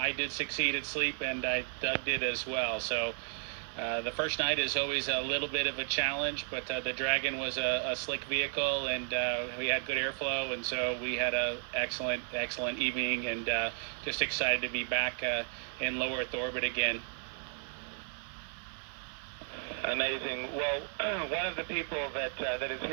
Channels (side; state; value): left; silent; 55 dB below the other